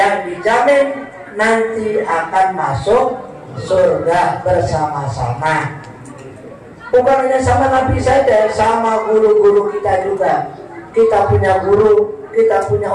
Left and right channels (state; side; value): identical; both; correlation 1.00